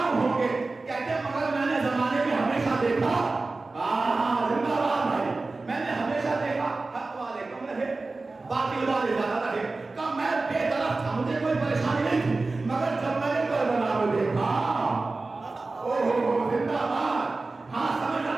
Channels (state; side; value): quieter; left; 3.5 dB